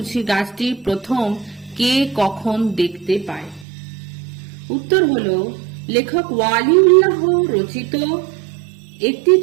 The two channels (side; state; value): left; drops out; at 3.7 s